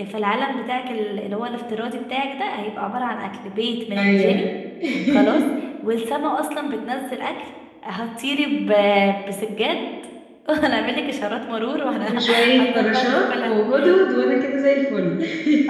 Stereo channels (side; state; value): both; identical; correlation 1.00